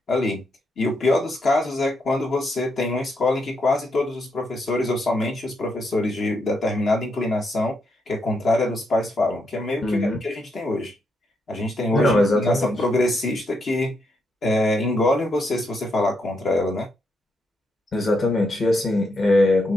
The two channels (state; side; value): normal; both; correlation 0.80